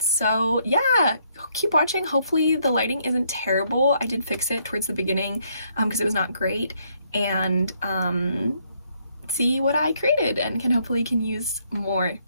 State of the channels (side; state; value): both; inverted; correlation -0.71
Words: so yeah, keep watching. Hopefully the lighting isn't terrible. I did fix it towards the beginning because it was not great, and see what I created and hopefully can use more